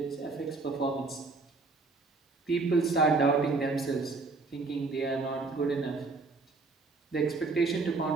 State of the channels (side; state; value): left; quieter; 3.9 dB